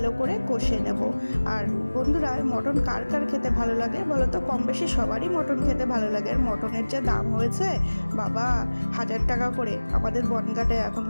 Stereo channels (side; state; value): both; inverted; correlation -1.00